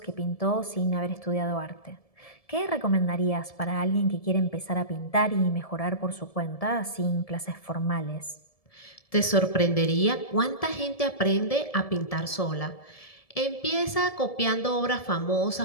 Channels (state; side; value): late; right; 1.7 ms